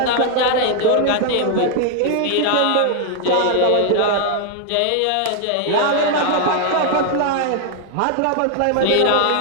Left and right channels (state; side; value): different; both; correlation 0.00